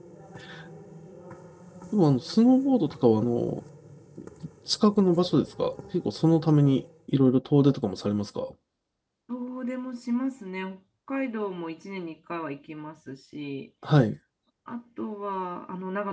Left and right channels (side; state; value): both; identical; correlation 1.00